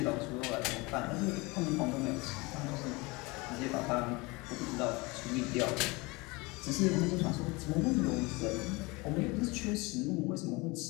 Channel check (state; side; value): quieter; right; 25.1 dB